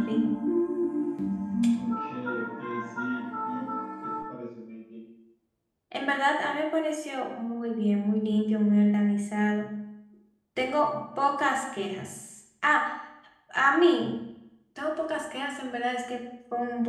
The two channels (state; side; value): identical; both; correlation 1.00